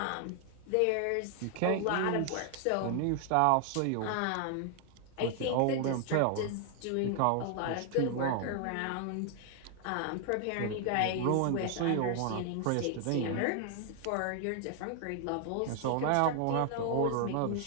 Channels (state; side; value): different; both; correlation 0.00